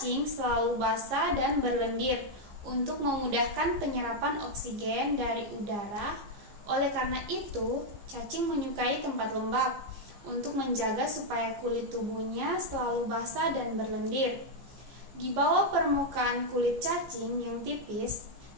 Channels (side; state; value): left; late; 14 ms